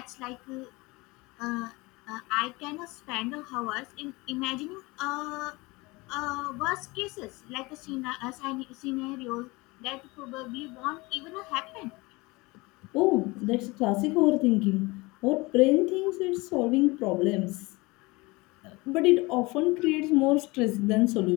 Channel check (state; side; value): quieter; right; 23.7 dB